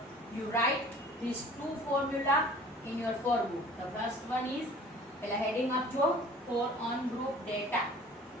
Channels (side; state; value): both; normal; correlation 0.47